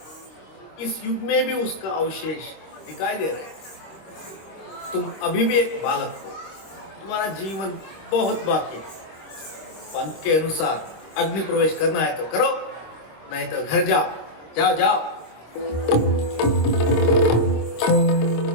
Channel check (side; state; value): right; late; 25 ms